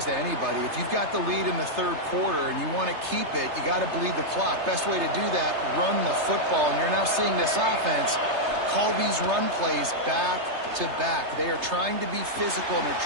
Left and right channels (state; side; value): late; left; 3.3 ms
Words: to anybody. If you've got the lead in the 3rd quarter and you want to keep it, you got to bleed the clock. Best way to do that, run the football. And you're now seeing this offense call these run plays back to back. They are trying to be physical, and